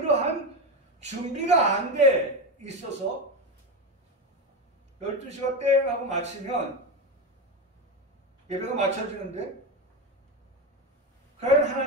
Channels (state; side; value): normal; both; correlation 0.16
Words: 준비가 안 돼 있어서 12시가 땡 하고 마치면 예배가 마쳐지는데 과연